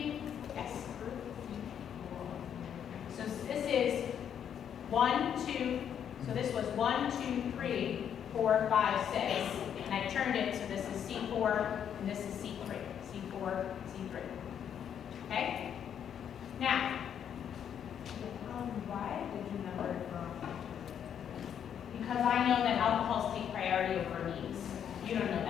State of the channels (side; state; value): right; quieter; 8.8 dB